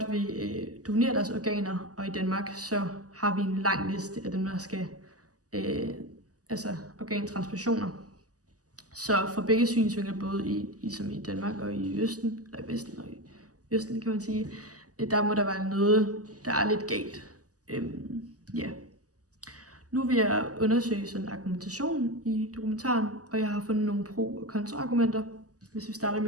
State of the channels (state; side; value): late; left; 0.67 ms